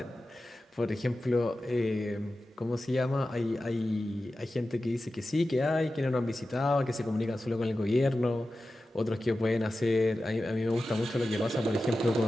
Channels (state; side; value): normal; both; correlation 0.94